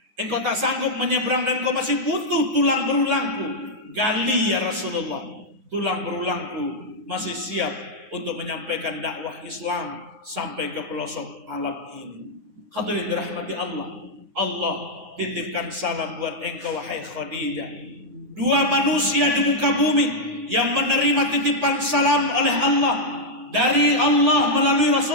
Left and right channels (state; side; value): late; left; 9.3 ms